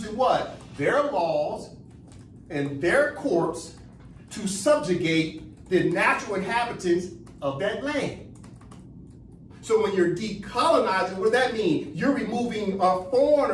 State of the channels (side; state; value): both; identical; correlation 1.00